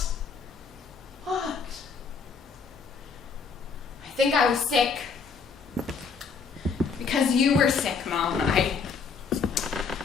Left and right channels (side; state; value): right; quieter; 5.4 dB